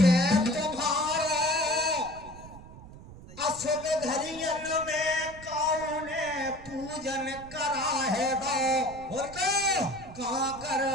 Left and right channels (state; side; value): noise; right; rumble, 17 dB below the sound